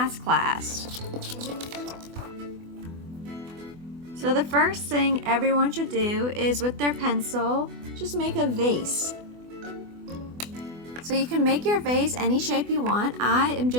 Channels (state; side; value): late; left; 24 ms